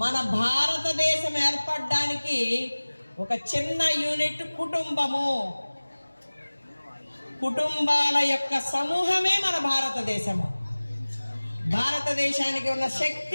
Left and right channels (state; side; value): inverted; both; correlation -1.00